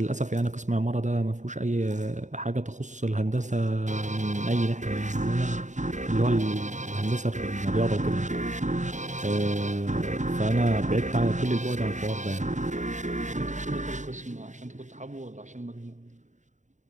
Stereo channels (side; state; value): left; late; 0.35 ms